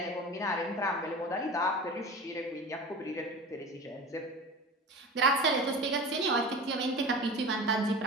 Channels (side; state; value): both; normal; correlation 0.34